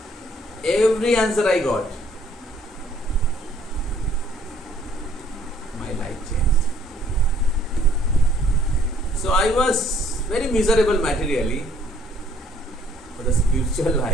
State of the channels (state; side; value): normal; both; correlation 0.62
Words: Every answer I got. My life changed. So I was very miserable materially. But the spiritual